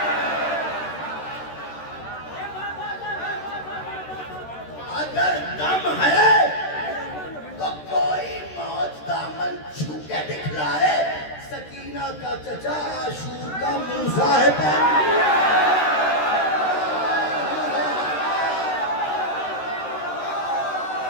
अगर दम है तो कोई मौज दामन छू के दिखलाए। सकीना का चचा आशूर का मूसा है पानी।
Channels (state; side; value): late; right; 13 ms